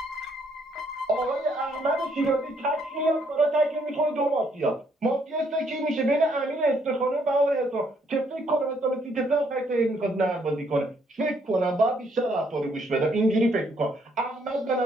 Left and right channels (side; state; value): both; normal; correlation 0.70